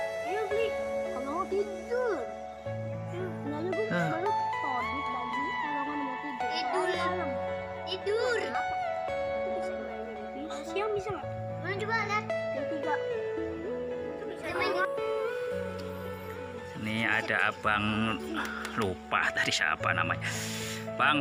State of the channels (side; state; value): both; identical; correlation 1.00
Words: Ayo beli. Kalau mau tidur. Nanya gue baru todit lagi. Kalau mau tidur. Tidur. Siang bisa nggak? Mana coba lihat. Yang 3. Ini ada abang, lupa tadi siapa namanya.